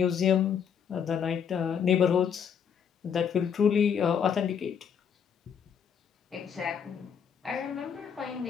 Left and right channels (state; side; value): quieter; right; 7.6 dB